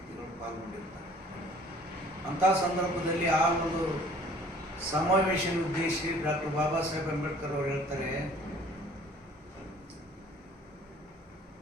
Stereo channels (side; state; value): both; normal; correlation 0.52